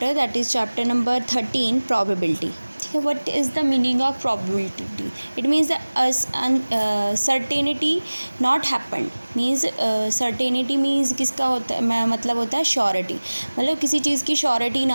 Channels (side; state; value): both; inverted; correlation -1.00